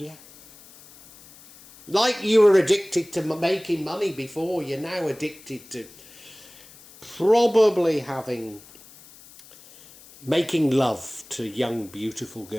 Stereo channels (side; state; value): left; noise; hiss, 22 dB below the sound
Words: Like you were addicted to making money before, you're now addicted to probably making love to young, beautiful